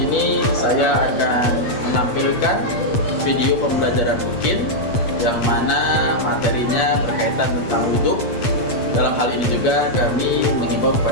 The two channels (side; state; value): right; late; 8.2 ms